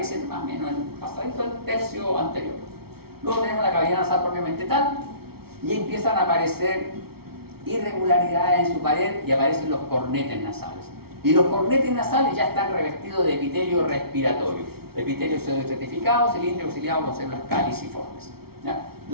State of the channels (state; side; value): late; left; 0.95 ms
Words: más o menos en pasadito el tercio anterior. Luego tenemos la cavidad nasal propiamente tal y empiezan a aparecer irregularidades en su pared y aparecen los cornetes nasales. Y los cornetes nasales ya están revestidos de epitelio respiratorio. Epitelio pseudoestratificado, cilíndrico auxiliado con células caliciformes, ¿ya?